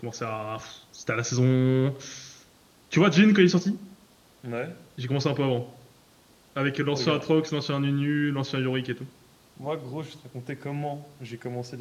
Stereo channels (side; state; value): both; identical; correlation 1.00